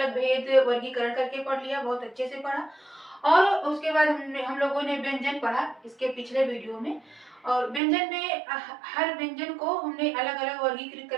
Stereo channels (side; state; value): left; drops out; at 7.8 s